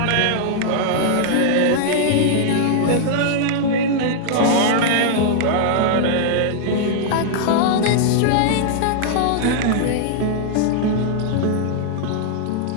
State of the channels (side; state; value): both; different; correlation -0.01